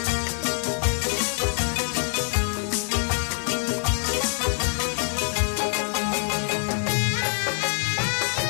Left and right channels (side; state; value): right; silent; 62 dB below the other